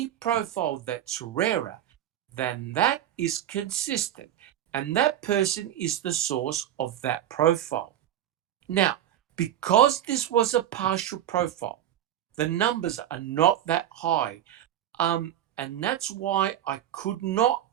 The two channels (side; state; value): left; quieter; 11.4 dB